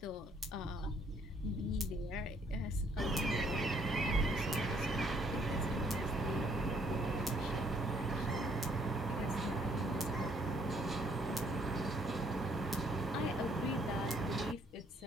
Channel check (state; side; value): normal; both; correlation 0.66